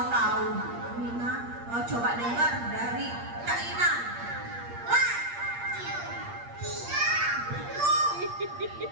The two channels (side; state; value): left; late; 8.5 ms